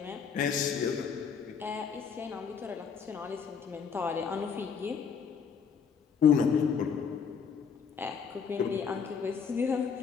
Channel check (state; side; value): quieter; right; 6.5 dB